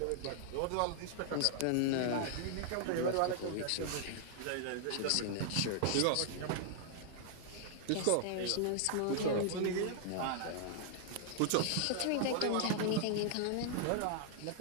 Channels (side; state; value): both; different; correlation 0.00